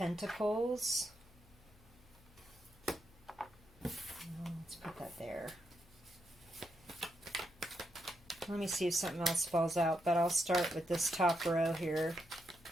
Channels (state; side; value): noise; left; hum, 26 dB below the sound